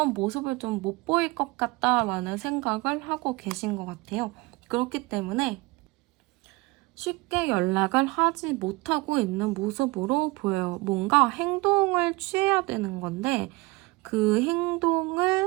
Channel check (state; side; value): quieter; left; 23.9 dB